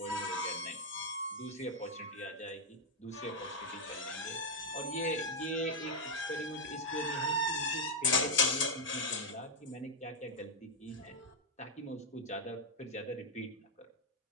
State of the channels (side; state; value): both; normal; correlation -0.01